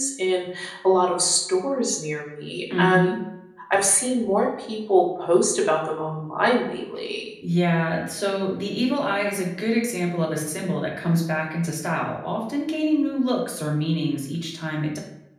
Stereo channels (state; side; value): identical; both; correlation 1.00